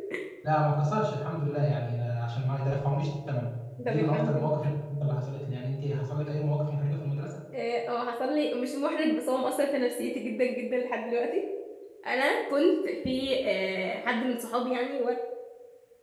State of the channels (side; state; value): both; identical; correlation 1.00